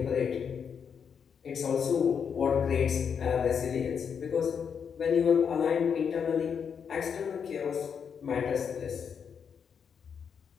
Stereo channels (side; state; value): right; quieter; 7.0 dB